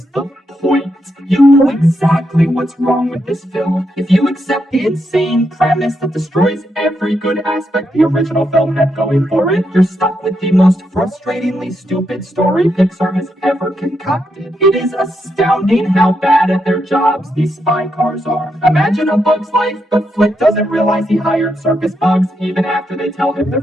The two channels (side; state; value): both; normal; correlation 0.81